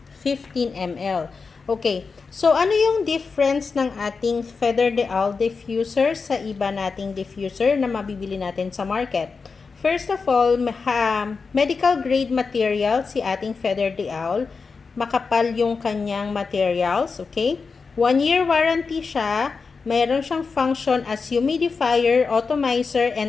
15 ml. Okay, so ano yung difference ng ating Feather the Owl diffuser sa iba nating diffuser na mabibili natin sa market? First of all, medical grade material si ating Feather the Owl. Makapal yung kanyang materials, okay? 1 year warranty siya. Mayroon siyang function as humidifier, atomizer,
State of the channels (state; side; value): quieter; right; 4.8 dB